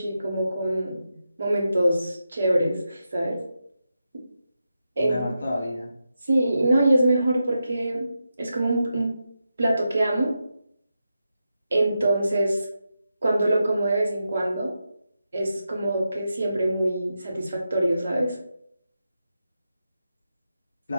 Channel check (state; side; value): inverted; both; correlation -0.88